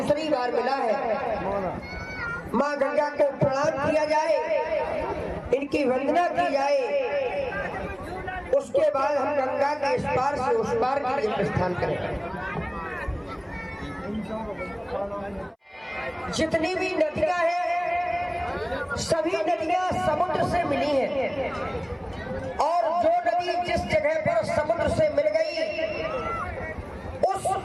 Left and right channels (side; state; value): both; identical; correlation 1.00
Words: बार मिला है। माँ गंगा को प्रणाम किया जाए, इनकी वंदना की जाए, उसके बाद हम गंगा के इस पार से उस पार के लिए प्रस्थान करें। जितनी भी नदियां हैं, सभी नदियां समुद्र से मिली हैं और जो नदी जिस जगह पर समुद्र से मिल गई, उस